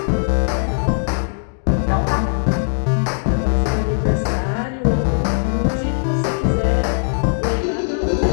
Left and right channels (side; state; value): right; silent; digital silence